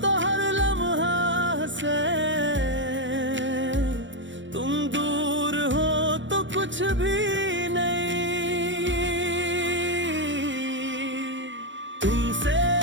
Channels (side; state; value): left; late; 0.54 ms